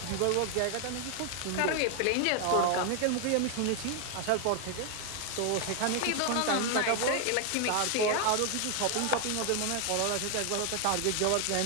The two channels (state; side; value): different; both; correlation 0.00